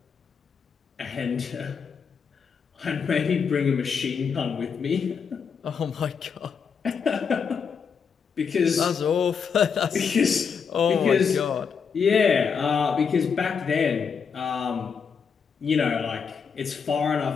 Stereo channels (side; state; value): right; quieter; 6.3 dB